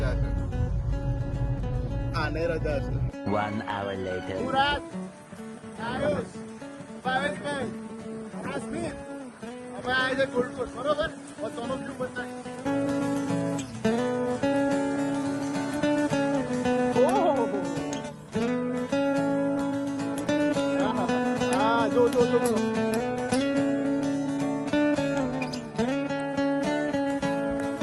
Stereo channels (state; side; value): identical; both; correlation 1.00